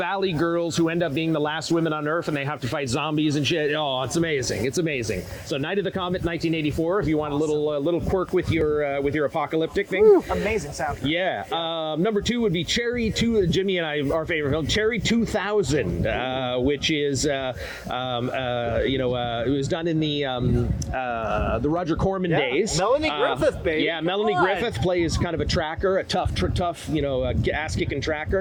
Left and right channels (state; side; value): identical; both; correlation 1.00